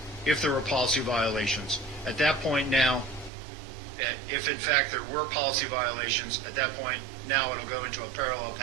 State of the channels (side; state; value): left; drops out; at 3.3 s